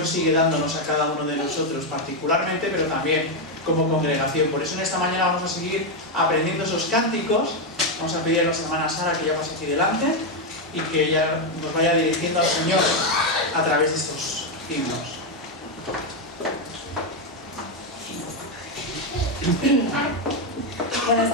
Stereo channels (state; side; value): normal; both; correlation 0.05